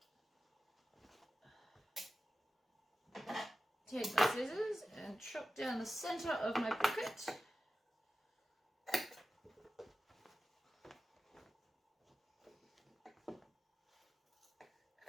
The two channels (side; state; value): both; normal; correlation 0.94